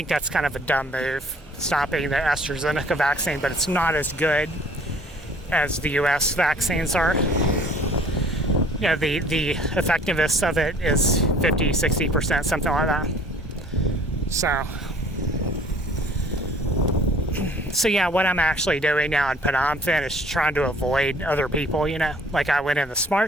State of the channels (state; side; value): normal; both; correlation 0.54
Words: that's kind of a dumb move, stopping the AstraZeneca vaccine, but it's not as good as the US vaccines are. The effectiveness of it is 50-60%, something like that. So yeah, what I'm actually doing now in Phnom is trying to avoid other people, Like I went in the